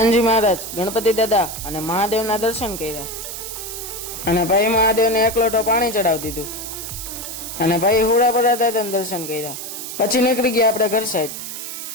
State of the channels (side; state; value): right; noise; hiss, 8 dB below the sound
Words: મહારાજ, ગણપતિ દાદા અને મહાદેવના દર્શન કર્યા અને ભાઈ મહાદેવને 1 લોટો પાણી ચડાવી દીધું અને ભાઈ હુડા પર હતા દર્શન કર્યા. પછી નીકળી ગયા આપણે ઘર સાઈડ.